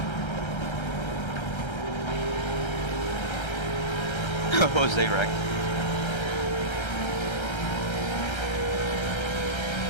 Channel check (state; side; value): late; right; 1.3 ms